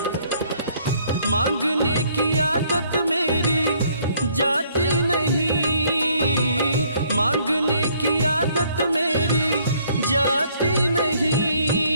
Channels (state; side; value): inverted; both; correlation -0.64